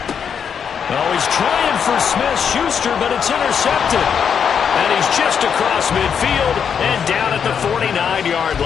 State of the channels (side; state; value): right; quieter; 7.3 dB